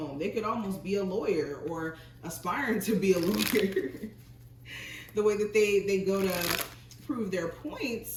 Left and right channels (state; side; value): identical; both; correlation 1.00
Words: They could almost be a lawyer or aspiring to be a lawyer. The way that they go to prove their